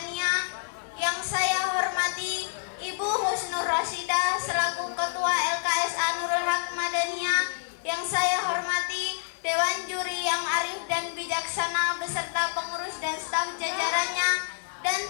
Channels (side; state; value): right; silent; digital silence